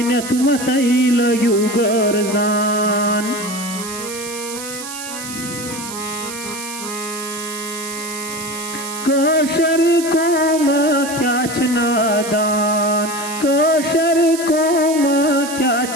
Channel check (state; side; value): noise; right; hiss, 10 dB below the sound